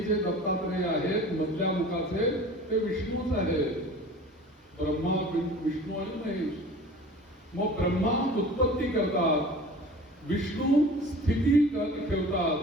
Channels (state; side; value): normal; both; correlation 0.42